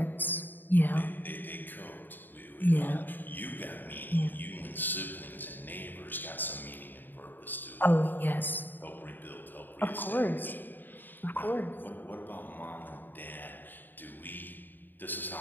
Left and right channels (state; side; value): late; right; 0.091 ms